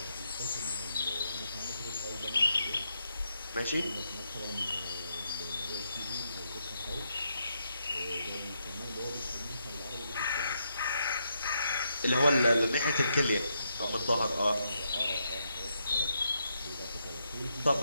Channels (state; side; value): inverted; both; correlation -0.80